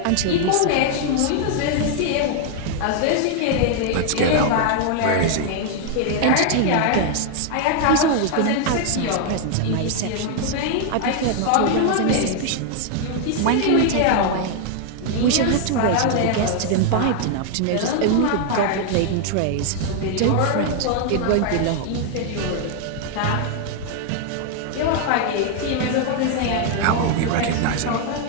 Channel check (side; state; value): both; different; correlation 0.00